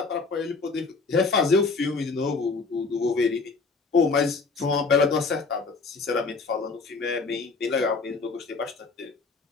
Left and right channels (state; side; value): quieter; right; 4.3 dB